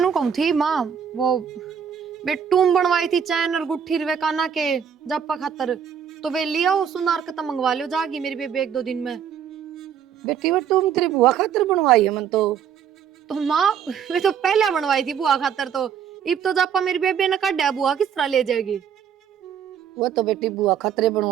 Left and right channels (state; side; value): quieter; left; 8.1 dB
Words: कहूं थी माँ, वो बेटूम बनवाई थी चैन और गुट्ठी रवे काना के जप्पा खातर, तो वे लिया हो सुनार का मंगवा लियो, जागी मेरी बेबे 1-2 दिन में। बेटी वो तुम तेरी बुआ खातिर बनवाई है मन तो माँ वे तो पहले बनवाई थी बुआ खातर, तो इब तो जप्पा मेरी बेबे ने काटा बुआ किस तरह ले जाएगी? वो तो बेटी बुआ खातिर